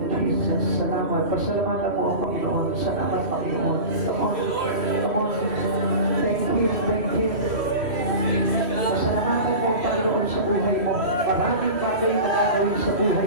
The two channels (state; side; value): late; left; 3.1 ms